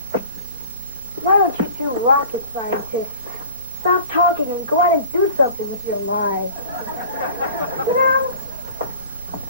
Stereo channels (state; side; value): inverted; both; correlation -0.44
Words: Why don't you two rocket scientists stop talking and go out and do something with your lives? You know,